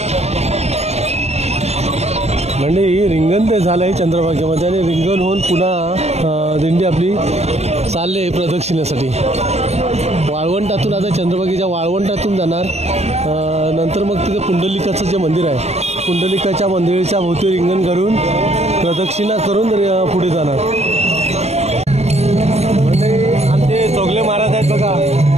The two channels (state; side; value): late; left; 0.31 ms